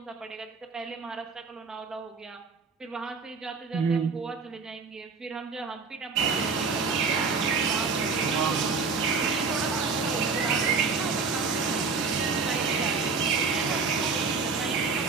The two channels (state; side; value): quieter; left; 4.7 dB